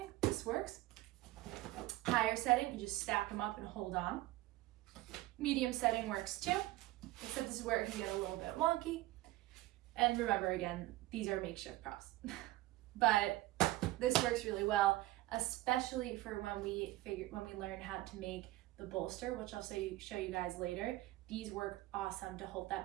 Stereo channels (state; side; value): quieter; left; 17.7 dB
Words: this works. Higher setting, you just stack them up and hold on. Medium setting works too, except this is where it can get a little bit wonky. And remember again, these are makeshift props. But this works really well, especially for when we learn how to make the bolster, which I'll show you guys later. These work awesome to hold